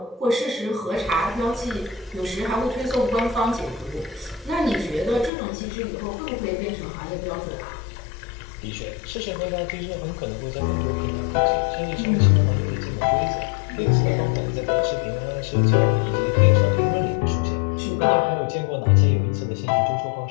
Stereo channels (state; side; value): drops out; right; at 5.3 s